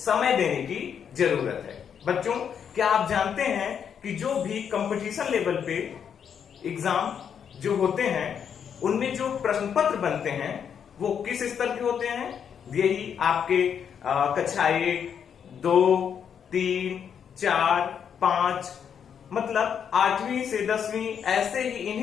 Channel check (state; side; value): quieter; right; 7.8 dB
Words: देने की जरूरत है। बच्चों, क्या आप जानते हैं कि जो भी कंपटीशन लेवल पे एग्जाम जो होते हैं उनमें जो प्रश्न पत्र बनते हैं वो किस स्तर के होते हैं? यही आपके कक्षा 1, 2, 3, 4, 5 मतलब 8वीं से 10वीं ऐसे ही